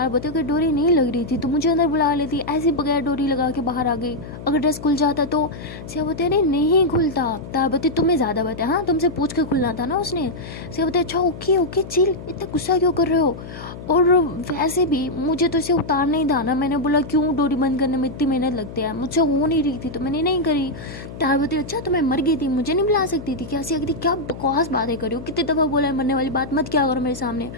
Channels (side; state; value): left; noise; hum, 12 dB below the sound